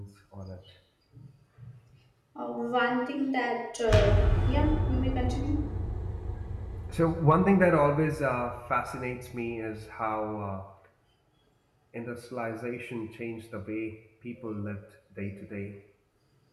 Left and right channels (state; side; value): identical; both; correlation 1.00